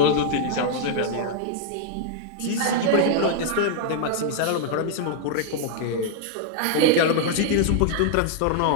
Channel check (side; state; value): both; different; correlation -0.01